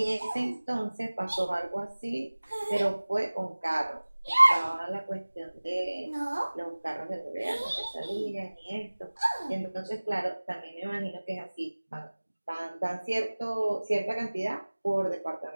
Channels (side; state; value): both; inverted; correlation -1.00